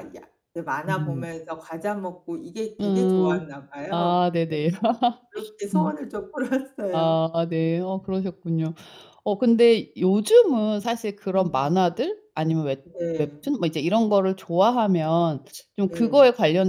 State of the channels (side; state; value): both; identical; correlation 1.00